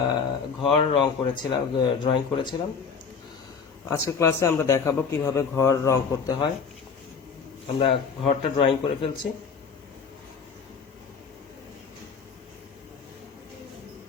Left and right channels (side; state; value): right; quieter; 5.8 dB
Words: ঘর ড্রয়িং করেছিলাম। আজকের ক্লাসে আমরা দেখাবো কিভাবে ঘর রং করতে হয়। আমরা ঘরটা ড্রয়িং করে ফেলছি।